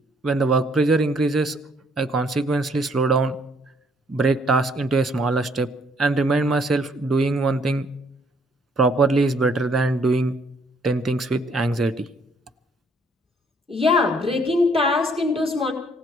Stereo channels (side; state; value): both; normal; correlation 0.65